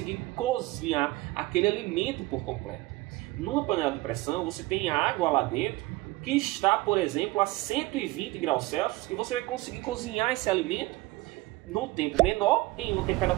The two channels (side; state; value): left; quieter; 20.4 dB